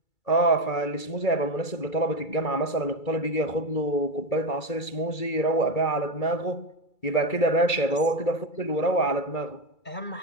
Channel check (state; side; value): late; right; 2.3 ms